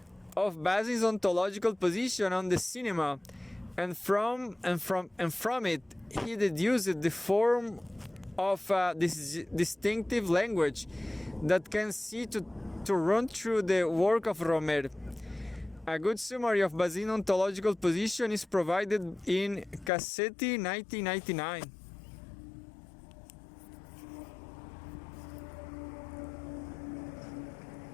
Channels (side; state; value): right; drops out; at 19.9 s